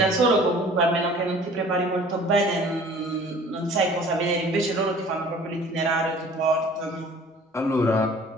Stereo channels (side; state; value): both; normal; correlation 0.49